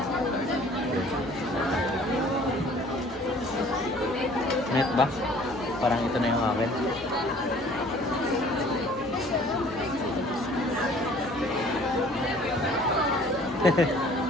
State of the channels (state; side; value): noise; left; hum, 20 dB below the sound